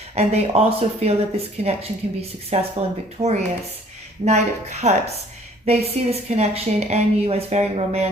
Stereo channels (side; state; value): both; normal; correlation 0.56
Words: And they also feel that this connection can be successful and victorious. Knight of Cups. They see this connection and you as very